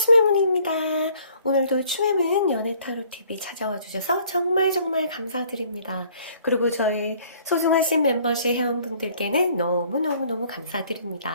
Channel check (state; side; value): inverted; both; correlation -0.58